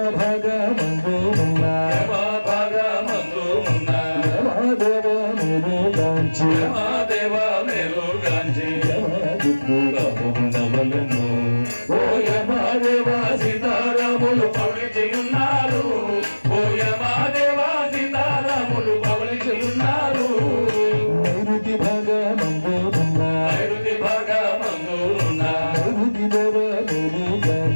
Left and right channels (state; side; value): inverted; both; correlation -1.00